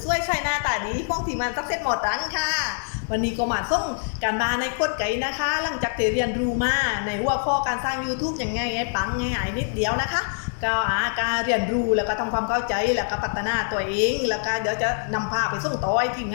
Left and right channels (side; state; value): right; silent; digital silence